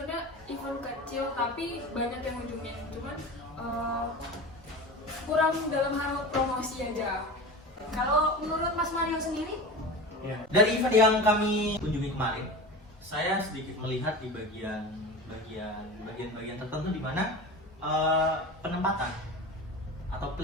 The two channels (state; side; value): normal; both; correlation 0.31